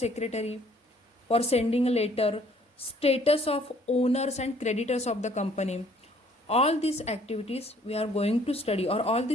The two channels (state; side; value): normal; both; correlation 0.60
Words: for sending a letter, status of owners and creditors of the company. All these activities we are going to study, or all